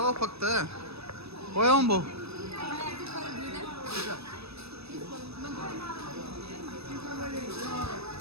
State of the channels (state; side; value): late; left; 0.78 ms